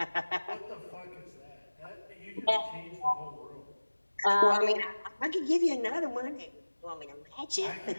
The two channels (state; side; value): inverted; both; correlation -1.00